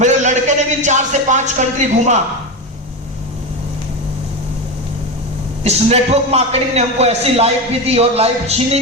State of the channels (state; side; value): normal; both; correlation 0.18